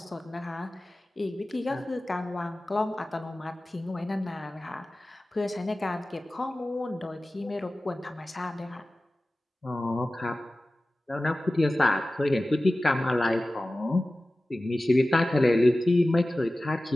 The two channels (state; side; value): normal; both; correlation 0.96